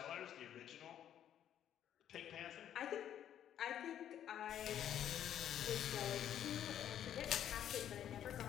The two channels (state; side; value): quieter; right; 10.3 dB